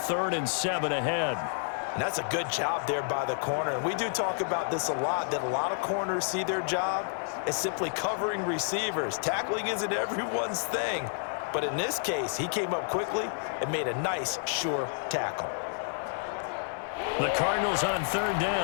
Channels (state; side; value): silent; right; 57 dB below the other